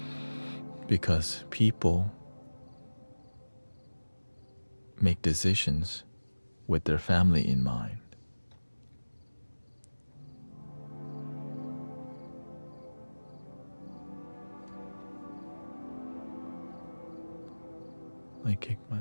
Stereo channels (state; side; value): inverted; both; correlation -1.00